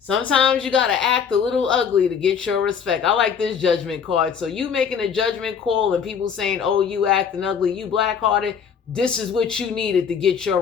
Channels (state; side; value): quieter; right; 7.0 dB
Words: you got to act a little ugly to get your respect. I like this judgment card. So you making a judgment call and people saying, oh, you acting ugly, you black-hearted, this is what you needed to get your